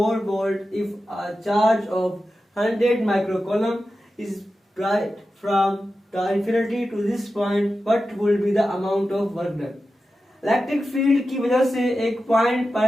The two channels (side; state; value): both; normal; correlation 0.92